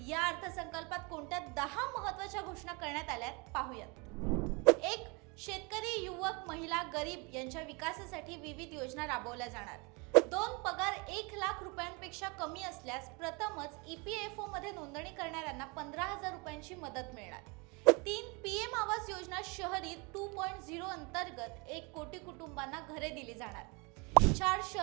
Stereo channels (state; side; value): quieter; left; 29.5 dB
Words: या अर्थसंकल्पात कोणत्या 10 महत्त्वाच्या घोषणा करण्यात आल्यात पाहूयात। 1. शेतकरी, युवक, महिला, गरीब यांच्या विकासासाठी विविध योजना राबवल्या जाणार। 2. पगार 1 लाख रुपयांपेक्षा कमी असल्यास प्रथमच EPFO मध्ये नोंदणी करणाऱ्यांना 15,000 रुपयांची मदत मिळणार। 3. PM आवास योजना शहरी 2.0 अंतर्गत 1 कोटी कुटुंबांना घरे दिली जाणार। 4.